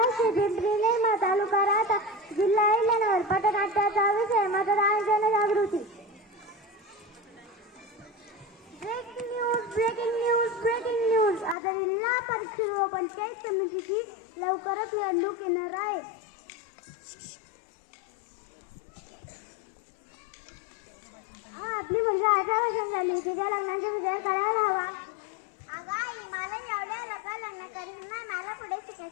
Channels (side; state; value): right; drops out; at 11.6 s